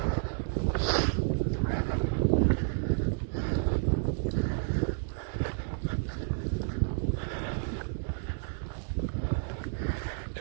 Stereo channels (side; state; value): left; silent; digital silence